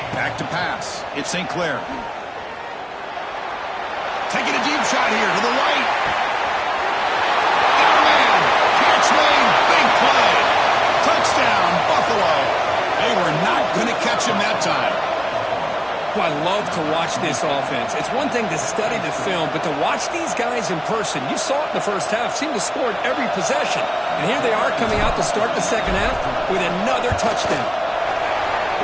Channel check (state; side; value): identical; both; correlation 1.00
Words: Back to pass. It's St. Clair. Taking a deep shot here to the right. Oh, man. Catch made. Big play. Touchdown, Buffalo. They were not going to catch him that time. Well, I love to watch this offense. It's one thing to study the film, but to watch these guys in person, you saw it in the first half, seemed to score at every possession. And here they are coming out to start the second half with another touchdown.